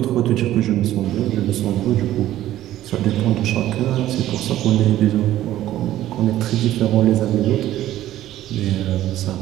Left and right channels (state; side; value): quieter; left; 13.7 dB